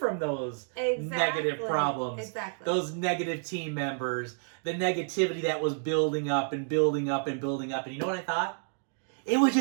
those negative problems. Exactly. Those negative team members, the negativity that was building up and building up and building up. And you know what I thought? It would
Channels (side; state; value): left; silent; digital silence